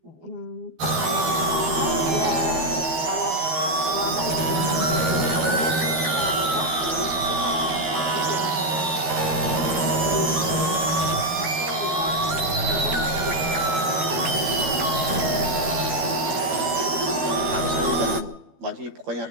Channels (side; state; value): left; late; 12 ms